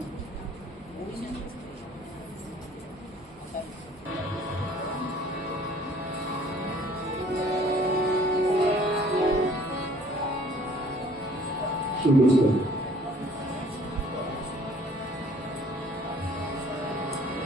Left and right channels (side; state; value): both; normal; correlation 0.55